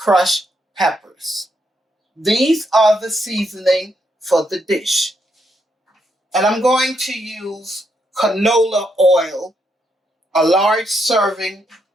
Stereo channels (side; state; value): both; normal; correlation 0.78